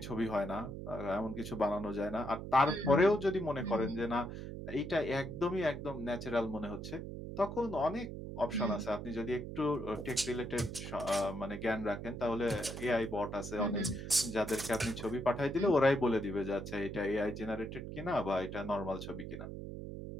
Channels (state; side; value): noise; right; hum, 8 dB below the sound